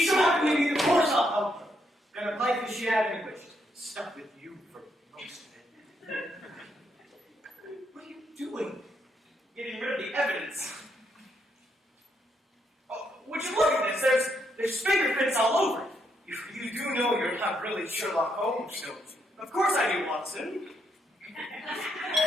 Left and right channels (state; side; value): normal; both; correlation 0.77